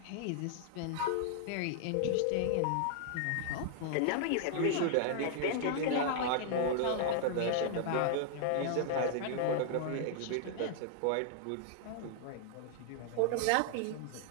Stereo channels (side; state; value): both; different; correlation 0.00